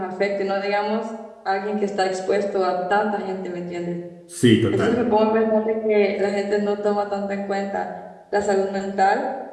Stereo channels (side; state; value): both; identical; correlation 1.00